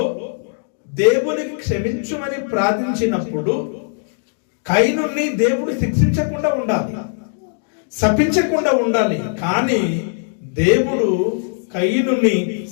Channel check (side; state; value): right; silent; digital silence